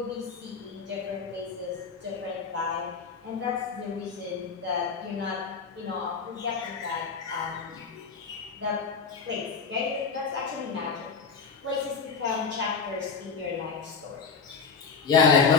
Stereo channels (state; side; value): quieter; right; 5.6 dB